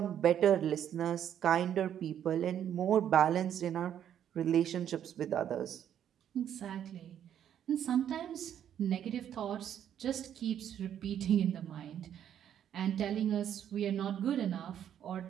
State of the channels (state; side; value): quieter; left; 9.8 dB